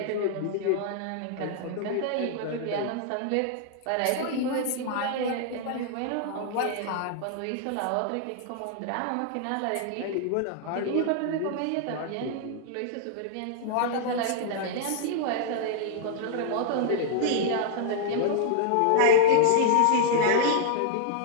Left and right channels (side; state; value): both; different; correlation -0.01